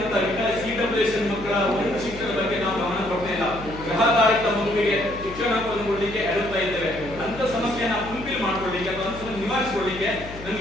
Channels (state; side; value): noise; left; hum, 14 dB below the sound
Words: CWS ಮಕ್ಕಳ ಒಂದು ಶಿಕ್ಷಣ ಬಗ್ಗೆ ನಾವು ಗಮನ ಕೊಡ್ತಾ ಇಲ್ಲ, ಗ್ರಹಧಾರಿತ ಮಗುವಿಗೆ ಶಿಕ್ಷಣವನ್ನು ಕೊಡಲಿಕ್ಕೆ ಅಡುತ್ತಾ ಇದ್ದೇವೆ. ಅಂತ ಸಮಸ್ಯೆನ ಫುಲ್ಫಿಲ್ ಮಾಡ್ಕೊಳ್ಳಿಕ್ಕೆ ಅಥವಾ ನಿವಾರಿಸಿಕೊಳ್ಳಿಕ್ಕೆ